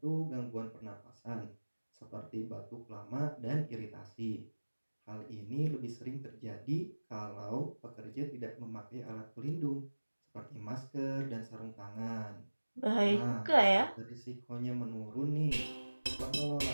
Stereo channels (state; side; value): inverted; both; correlation -1.00